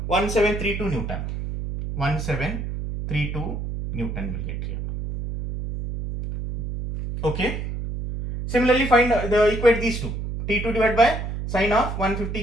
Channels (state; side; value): noise; right; hum, 5 dB below the sound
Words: 1732 Newton. 1732 Newton will get here. Okay. Similarly, find equate these two. T2 divided by sine of 150